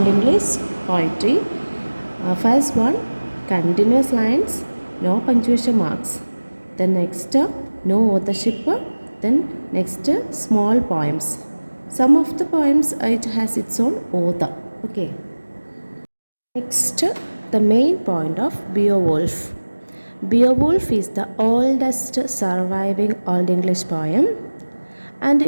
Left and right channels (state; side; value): inverted; both; correlation -1.00